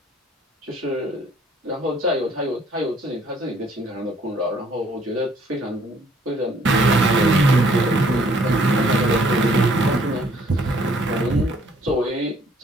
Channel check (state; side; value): normal; both; correlation 0.62